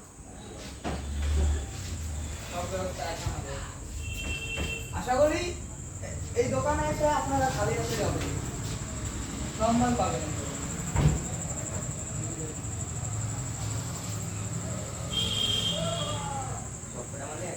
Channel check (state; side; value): identical; both; correlation 1.00